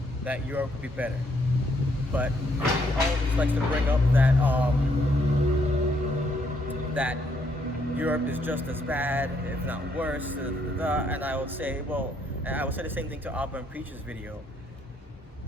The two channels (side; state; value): both; normal; correlation 0.72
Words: that Europe would be better, but he always likes to bring up that Europe is just as bad, if not worse, and I would say, well, and I would say the same thing to Abba and Preach's video.